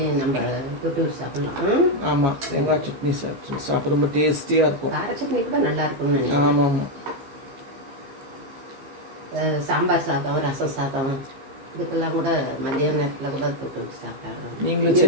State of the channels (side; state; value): left; late; 14 ms